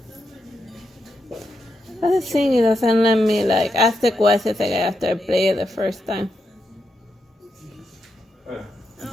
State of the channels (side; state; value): both; normal; correlation 0.84